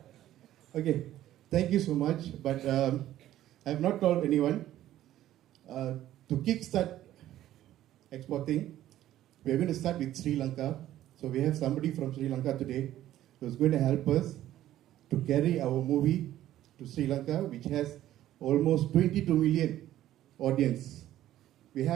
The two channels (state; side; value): quieter; left; 13.2 dB